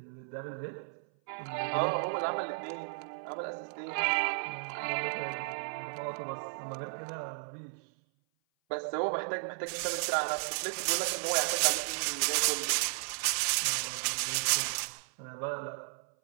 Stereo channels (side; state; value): left; silent; 55 dB below the other